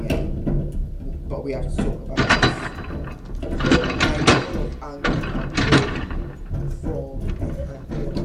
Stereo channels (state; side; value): identical; both; correlation 1.00